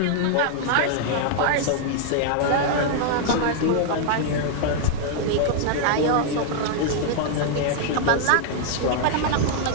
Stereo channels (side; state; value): both; different; correlation -0.01